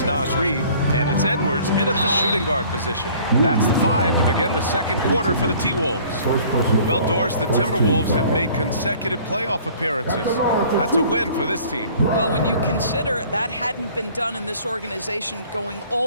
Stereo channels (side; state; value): both; inverted; correlation -0.52